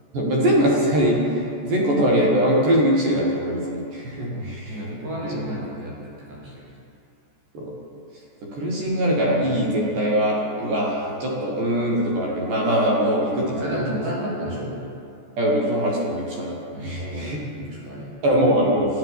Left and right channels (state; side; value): late; left; 14 ms